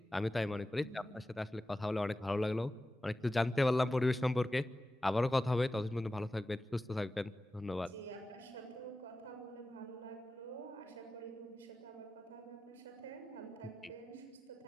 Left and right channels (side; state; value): both; normal; correlation 0.94